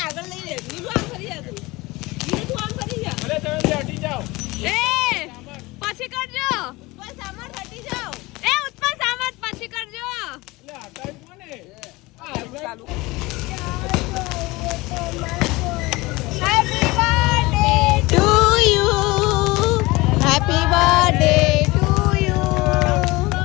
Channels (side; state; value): right; quieter; 21.8 dB